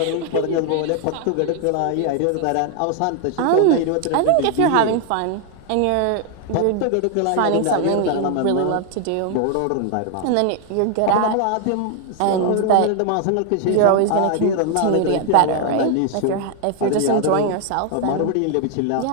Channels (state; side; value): different; both; correlation 0.00